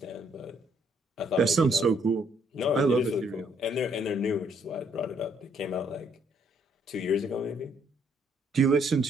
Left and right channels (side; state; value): both; normal; correlation 0.68